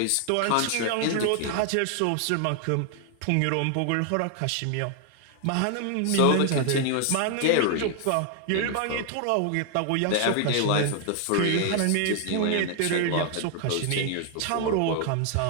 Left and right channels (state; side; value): different; both; correlation 0.00